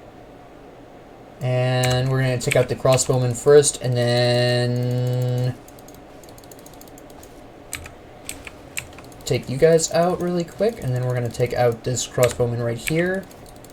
And we're going to take out the crossbowman first, and then take you guys out really quick, and then we're going to take out this crossbowman right here.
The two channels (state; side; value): identical; both; correlation 1.00